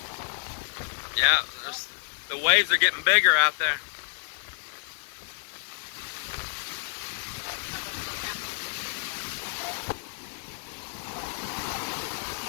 Yeah, the waves are getting bigger out there.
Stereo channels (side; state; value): right; silent; digital silence